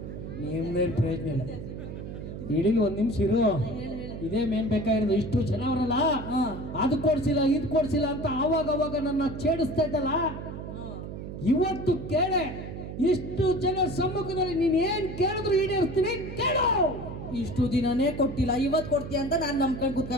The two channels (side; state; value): right; noise; hum, 9 dB below the sound